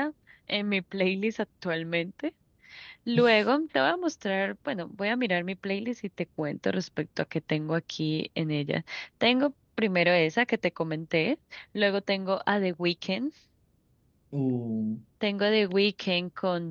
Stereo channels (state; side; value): identical; both; correlation 1.00